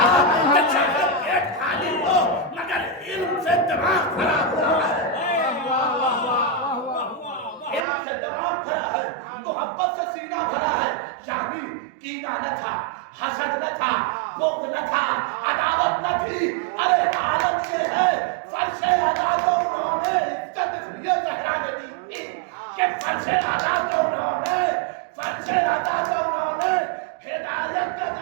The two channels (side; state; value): left; drops out; at 7.9 s